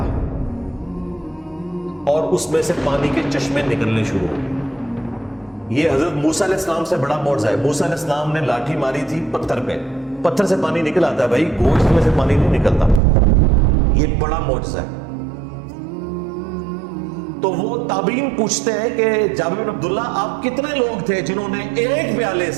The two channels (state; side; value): drops out; left; at 13.0 s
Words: اور اس میں سے پانی کے چشمے نکلنے شروع ہو گئے۔ یہ حضرت موسیٰ علیہ السلام سے بڑا معجزہ ہے۔ موسیٰ علیہ السلام نے لاٹھی ماری تھی پتھر پہ، پتھر سے پانی نکل آتا ہے بھائی، گوشت میں سے پانی نہیں نکلتا، یہ بڑا معجزہ ہے۔ تو وہ تابعین پوچھتے ہیں کہ جابر بن عبداللہ آپ کتنے لوگ تھے جنہوں نے ایک پیالے